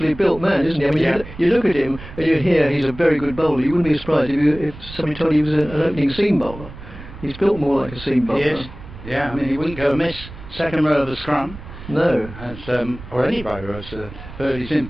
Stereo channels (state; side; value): noise; right; rumble, 15 dB below the sound